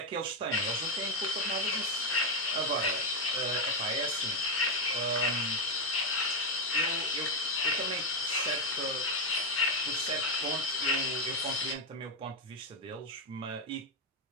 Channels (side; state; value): both; normal; correlation 0.04